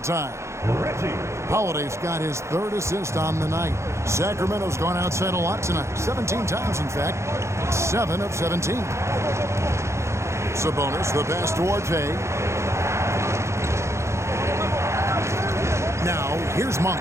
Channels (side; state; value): left; late; 0.14 ms